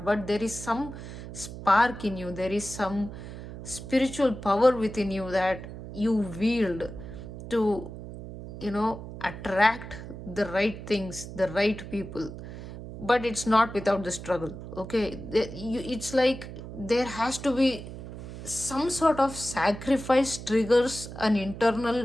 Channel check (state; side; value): noise; right; hum, 11 dB below the sound